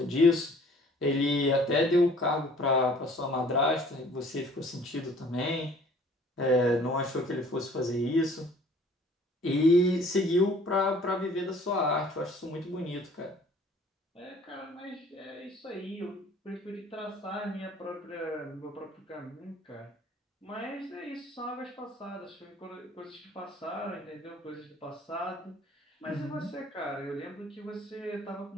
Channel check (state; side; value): normal; both; correlation 0.53